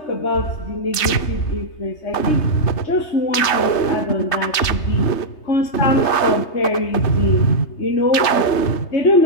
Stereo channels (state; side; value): late; right; 3.3 ms